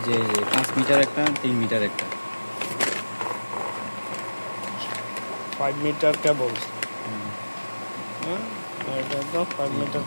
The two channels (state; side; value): inverted; both; correlation -1.00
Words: যে 5 মিটার একটা 3 মিটার একটা 5 মিটার কেবল, এটা তো 5 মিটার